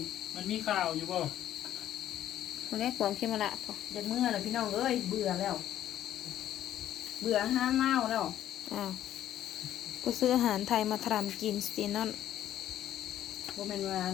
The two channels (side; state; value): right; quieter; 11.8 dB